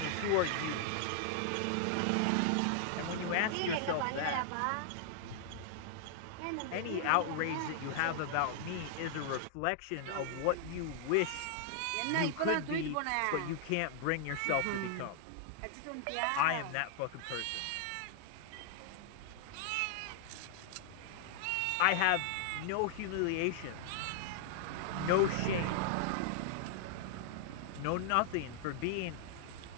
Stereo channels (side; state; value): both; different; correlation -0.01